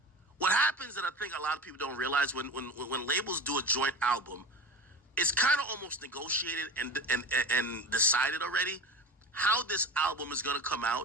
What happens that I think a lot of people don't realize when labels do a joint album, it's kind of almost negotiated and decided already how this album is going to come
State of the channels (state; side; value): normal; both; correlation 0.31